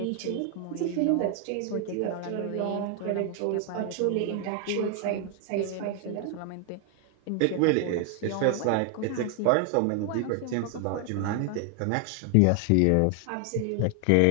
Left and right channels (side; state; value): both; different; correlation 0.00